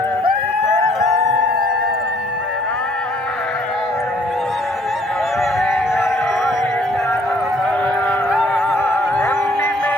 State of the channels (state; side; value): normal; both; correlation 0.61